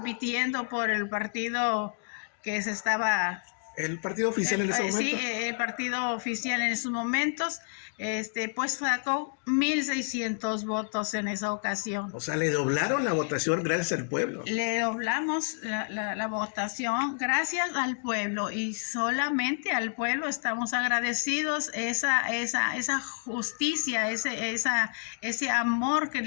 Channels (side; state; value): right; silent; digital silence